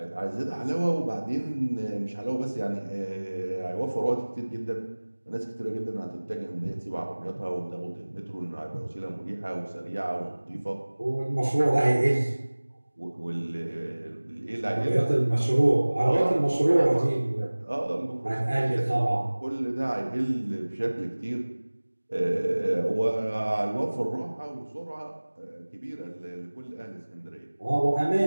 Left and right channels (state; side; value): inverted; both; correlation -1.00